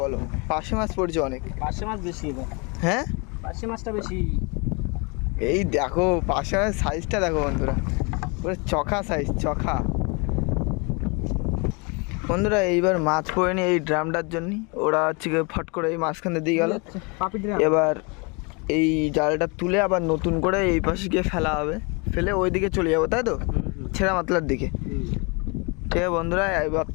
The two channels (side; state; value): right; quieter; 31.0 dB